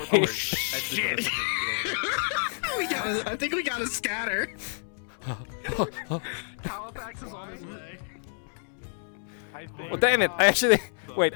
door. Shit. I think we gotta scatter. Halifax is on his way. Well, damn it! I actually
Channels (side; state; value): right; silent; 59 dB below the other